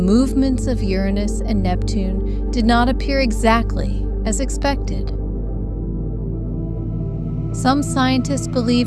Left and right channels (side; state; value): both; identical; correlation 1.00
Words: of Uranus and Neptune did not appear exactly as expected. Some scientists